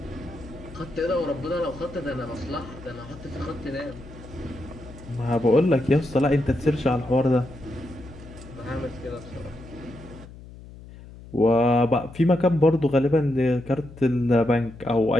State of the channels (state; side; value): noise; left; hum, 17 dB below the sound